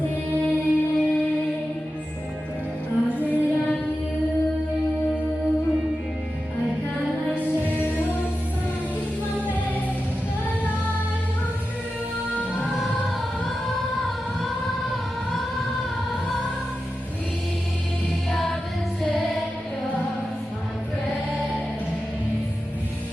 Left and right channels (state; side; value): normal; both; correlation 0.92